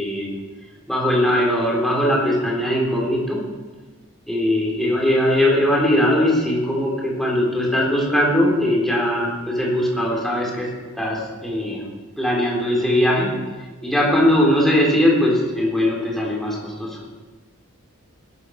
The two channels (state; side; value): normal; both; correlation 0.63